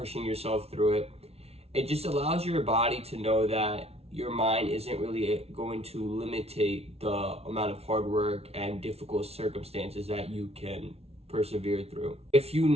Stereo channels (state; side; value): late; left; 0.30 ms